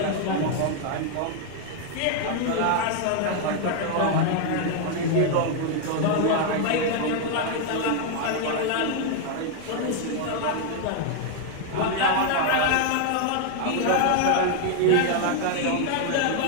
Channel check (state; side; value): different; both; correlation 0.00